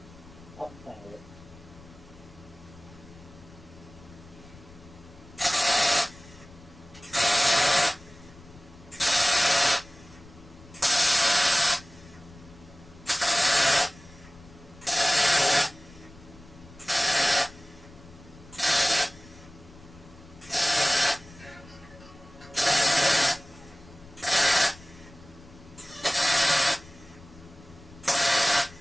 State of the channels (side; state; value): left; noise; rumble, 21 dB below the sound